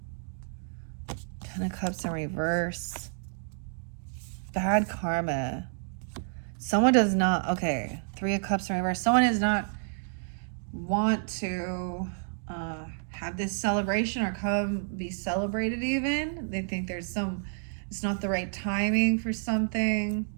Ten of Cups in reverse. Bad karma. Someone does not, okay, Three of Cups in reverse. Someone does not want to have this celebration or come be celebrated even. They think it's not the right timing for something.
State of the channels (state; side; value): silent; left; digital silence